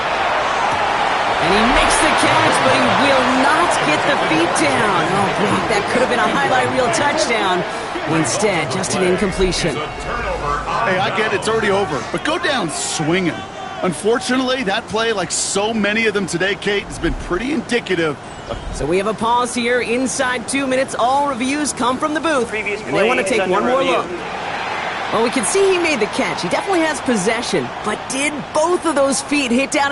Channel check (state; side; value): identical; both; correlation 1.00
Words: And he makes the catch, but he will not get the feet down. Oh, Brock, that could have been a highlight reel touchdown. Instead, just an incompletion. Hey, I get it. It's already over. But go down swinging. Unfortunately, that play, like so many of them today, Kate, has been pretty indicative. So we have a pause here. Inside 2 minutes, all reviews come from the booth. And they want to take one more look. Well, we can see he made the catch. He definitely has possession. But did both of those feet hit